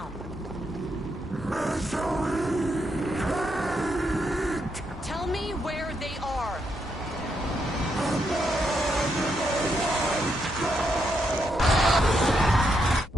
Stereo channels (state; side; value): normal; both; correlation 0.80